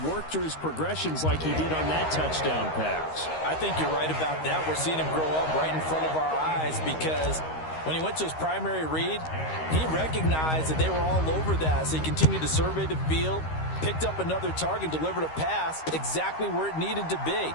worked through his progressions like he did on that touchdown pass. I think you're right about that. We're seeing him grow up right in front of our eyes because when he went to his primary read, he recognized that they were all over that. So he continued to survey the field, picked up another target, delivered a pass exactly where it needed to be.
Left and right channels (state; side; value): late; right; 13 ms